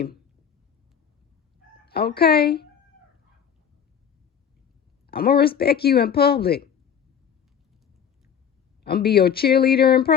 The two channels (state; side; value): quieter; right; 8.1 dB